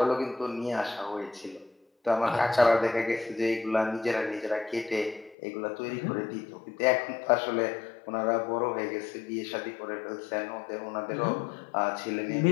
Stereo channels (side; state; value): right; drops out; at 5.4 s